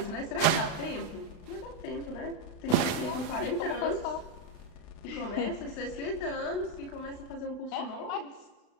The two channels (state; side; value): late; right; 35 ms